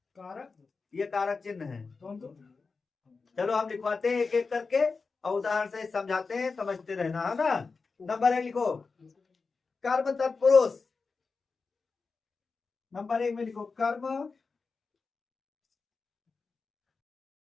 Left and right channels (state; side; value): quieter; right; 4.5 dB